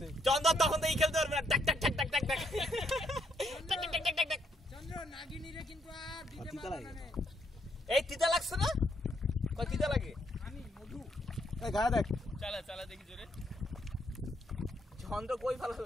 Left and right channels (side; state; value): both; normal; correlation 0.74